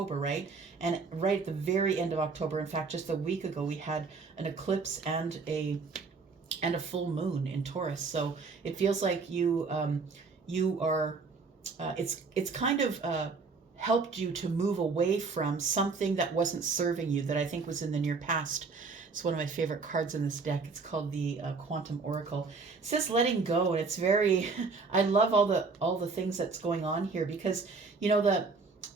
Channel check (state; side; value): quieter; left; 4.5 dB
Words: right? And right at the very end of October, in fact, just a week ago, we had an eclipse and a full moon in Taurus. So it feels like you are. It's kind of helped you to move away from something that wasn't serving you, that I think was in the near past. It's one of my favorite cards in this deck. It's called the Quantum Oracle. It says letting go, and it's very, I love all the things that's going on here, because you know